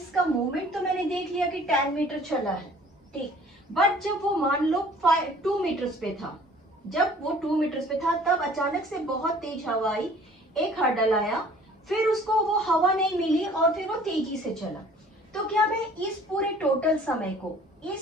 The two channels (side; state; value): both; normal; correlation 0.52